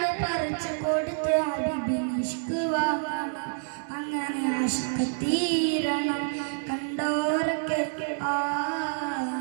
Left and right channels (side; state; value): left; silent; 59 dB below the other